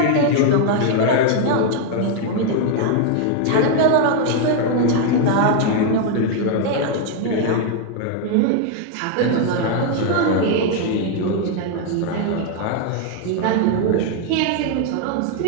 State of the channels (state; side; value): different; both; correlation 0.00